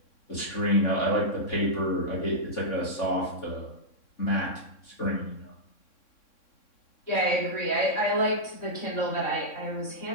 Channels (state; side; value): late; right; 3.6 ms